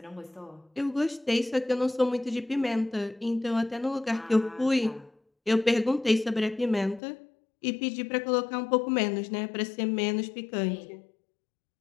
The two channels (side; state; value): right; drops out; at 7.0 s